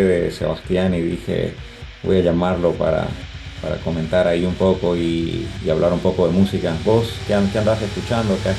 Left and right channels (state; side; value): identical; both; correlation 1.00